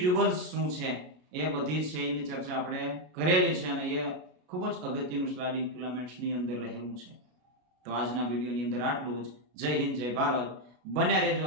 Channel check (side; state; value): left; late; 33 ms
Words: શું છે, એ બધી છે એની ચર્ચા આપણે કરેલી છે અને એ ખૂબ જ અગત્યનું સ્લાઇડિંગ ફિલામેન્ટ્સની અંદર રહેલું છે. તો આજના વિડીયોની અંદર આટલું જ. જય હિન્દ, જય ભારત. બન્યા રહેજો